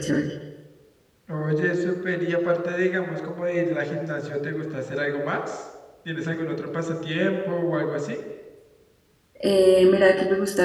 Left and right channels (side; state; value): both; identical; correlation 1.00